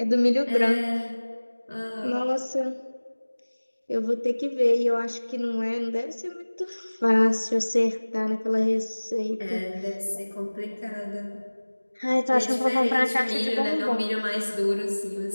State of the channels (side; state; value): both; inverted; correlation -1.00